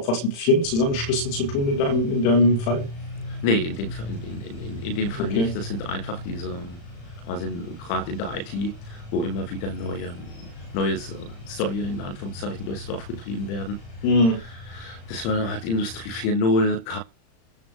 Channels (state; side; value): late; right; 35 ms